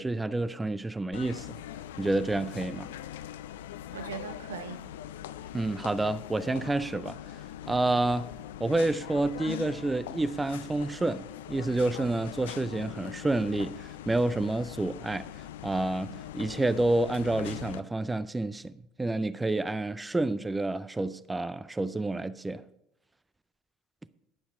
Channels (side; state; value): both; normal; correlation 0.89